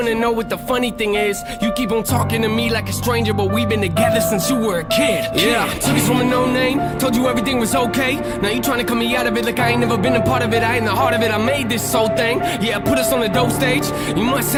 to know what the funny thing is? You keep on talking to me like a stranger, but we've been together since you were a kid. Yeah, took us from a no name, told you everything was okay. Now you trying to cut me out of it like I ain't never been a part of it. I ain't the heart of it, I made this whole thing. Yeah, put us on the dope stage. You must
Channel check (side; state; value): both; identical; correlation 1.00